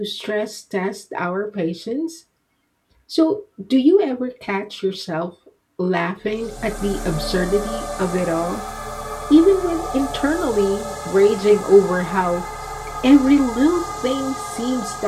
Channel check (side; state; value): both; identical; correlation 1.00